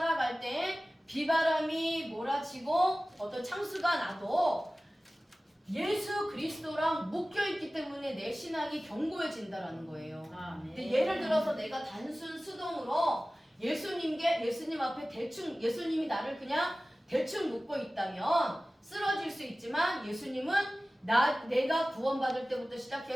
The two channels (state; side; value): normal; both; correlation 0.97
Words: 때 비바람이 몰아치고 어떤 창수가 나도 예수 그리스도랑 묶여있기 때문에 내 신앙이 견고해진다라는 거예요. 근데 예를 들어서 내가 단순 수동으로 예수님 앞에 예수님이 나를 그냥 대충 묶고 있다면 쓰러질 수 있지만 예수님은 내가 구원받을 때부터